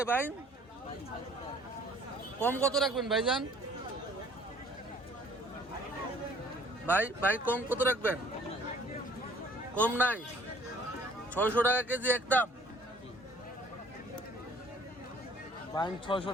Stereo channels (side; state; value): both; normal; correlation 0.54